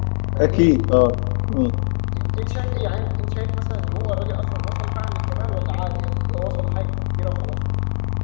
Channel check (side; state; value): right; silent; 65 dB below the other